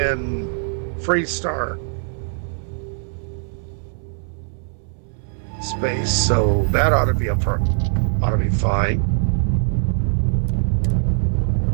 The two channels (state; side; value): silent; left; 65 dB below the other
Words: Freestar space, so that ought to be fine.